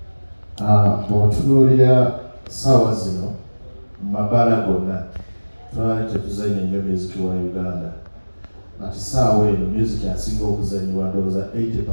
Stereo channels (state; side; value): inverted; both; correlation -1.00